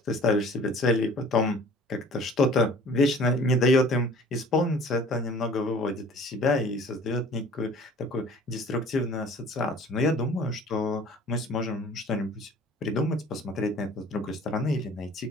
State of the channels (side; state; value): both; normal; correlation 0.48